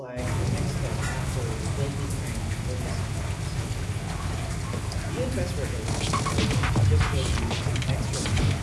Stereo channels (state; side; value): identical; both; correlation 1.00